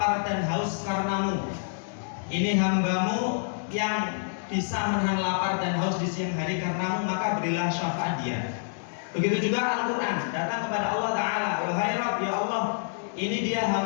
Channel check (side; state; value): right; silent; digital silence